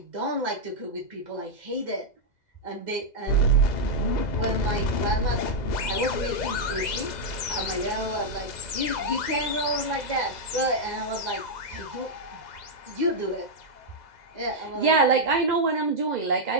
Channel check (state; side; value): late; right; 2.0 ms